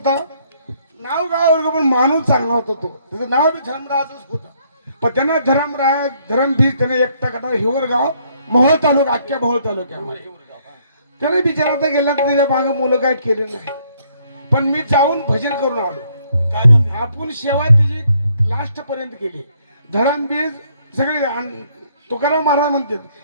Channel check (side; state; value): both; inverted; correlation -0.67